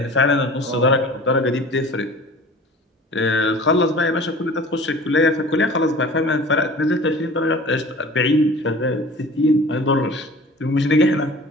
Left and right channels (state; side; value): normal; both; correlation 0.43